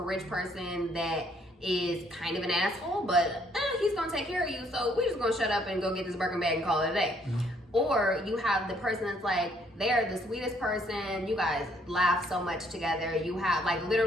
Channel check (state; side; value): normal; both; correlation 0.67